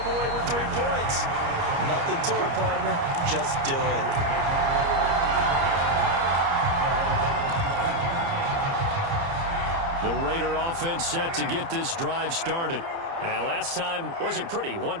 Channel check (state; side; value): late; left; 30 ms